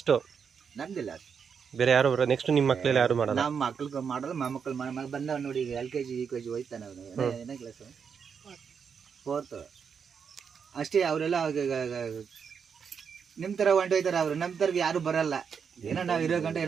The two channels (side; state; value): left; quieter; 6.6 dB